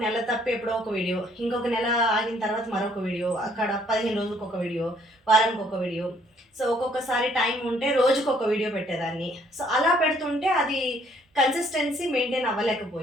నెల తప్పి ఎప్పుడో ఒక వీడియో, ఇంకొక నెల ఆగిన తర్వాత మరొక వీడియో, అక్కడ 15 రోజులకు ఒక వీడియో, వారానికి ఒక వీడియో. సో ఒక్కొక్కసారి టైం ఉంటే రోజుకు ఒక వీడియో పెట్టేదాన్ని. సో అలా పెడుతుంటే అది కన్సిస్టెన్సీ మెయింటైన్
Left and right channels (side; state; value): both; normal; correlation 0.64